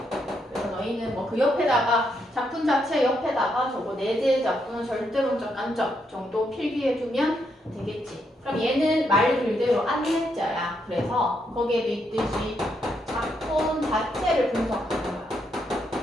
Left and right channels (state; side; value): normal; both; correlation 0.78